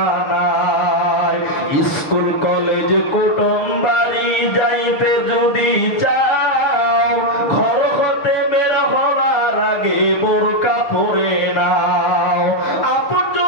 স্কুল কলেজ কুটুম বাড়ি যাইতে যদি চাও, ঘর হতে বের হওয়ার আগে বোরকা পরে নাও।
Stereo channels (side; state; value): right; late; 6.6 ms